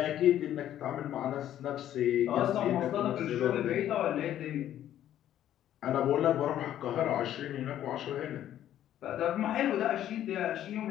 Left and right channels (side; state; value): right; quieter; 11.7 dB